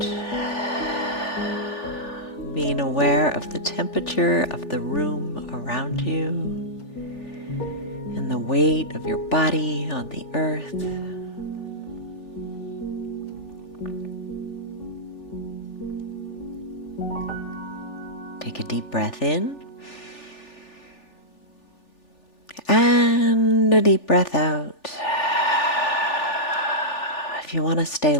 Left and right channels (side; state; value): right; late; 3.4 ms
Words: Being aware of the temperature of the room around you and the weight of your body on the earth. Take a deep breath in and a deep breath out. If you want to stay